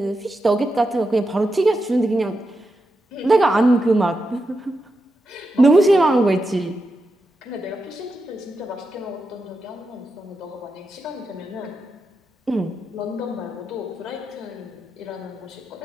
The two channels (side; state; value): both; normal; correlation 0.87